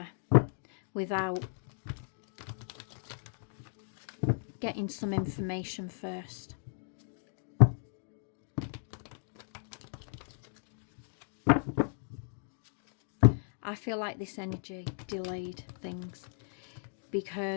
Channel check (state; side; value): silent; right; digital silence